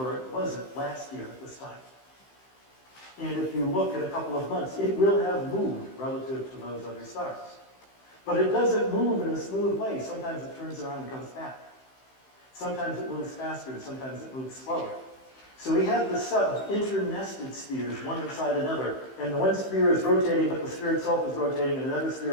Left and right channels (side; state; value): right; late; 15 ms